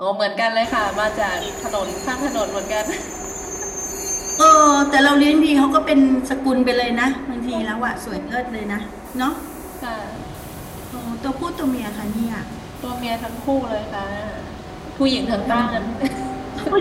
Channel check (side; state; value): both; identical; correlation 1.00